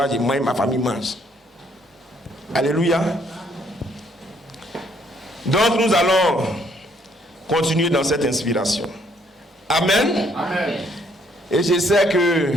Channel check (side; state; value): both; normal; correlation 0.67